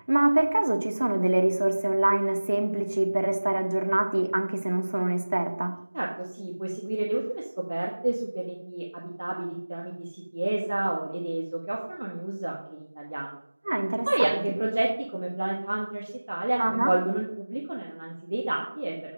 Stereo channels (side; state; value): both; inverted; correlation -1.00